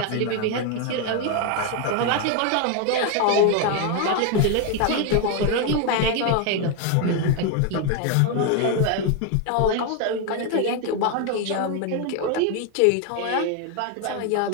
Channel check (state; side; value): different; both; correlation 0.01